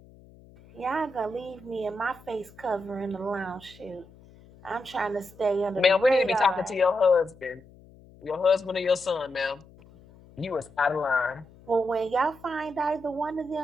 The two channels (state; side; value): noise; left; hum, 24 dB below the sound